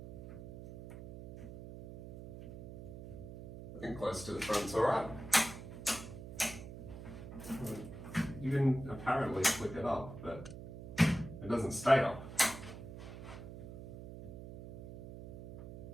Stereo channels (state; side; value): noise; right; hum, 12 dB below the sound